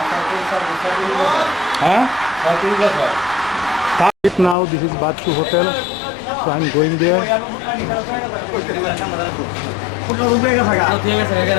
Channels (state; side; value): drops out; right; at 4.5 s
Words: হ্যাঁ? Now this is Bachu Hotel, so I'm going there.